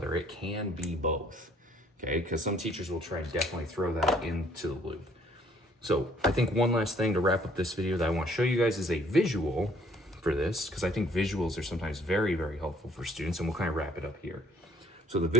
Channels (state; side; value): normal; both; correlation 0.61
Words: It can be both, okay? Because some teachers will try and definitely throw that into the loop. So I think one last thing to wrap up this video that I want to show you guys is a visual for this, because I think visuals are sometimes very, very helpful for students, and we'll kind of wrap it up here. So the